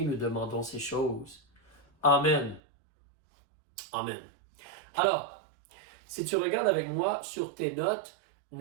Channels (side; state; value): left; drops out; at 2.6 s